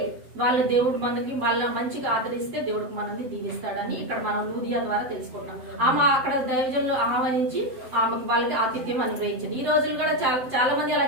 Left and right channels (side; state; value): left; late; 7.7 ms